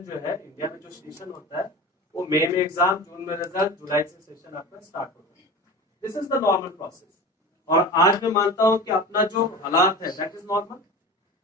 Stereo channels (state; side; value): normal; both; correlation 0.32